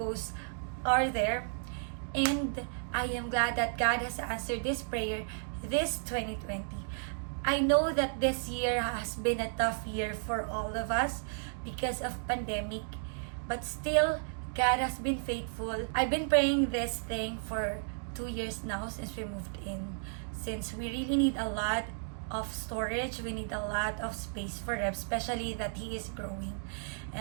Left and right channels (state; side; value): silent; left; digital silence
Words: are there. And I am glad that God has answered this prayer this 2020. I know that this year has been a tough year for all of us because of pandemic, but still God has been faithful. I've been praying this thing for 2 years now since we moved in. Since we really need a lot of storage, we need a lot of space for him, especially that he is growing.